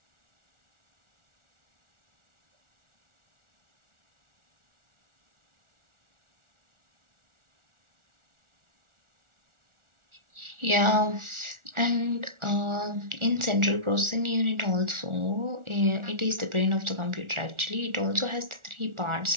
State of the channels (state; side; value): late; left; 1.4 ms